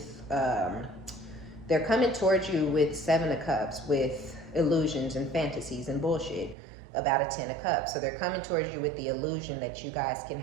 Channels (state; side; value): drops out; left; at 6.6 s